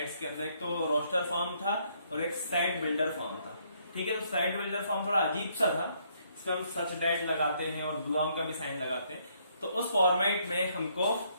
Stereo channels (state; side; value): inverted; both; correlation -0.70